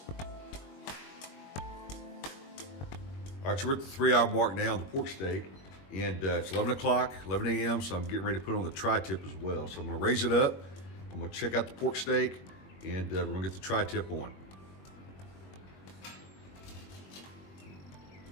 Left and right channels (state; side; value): late; right; 21 ms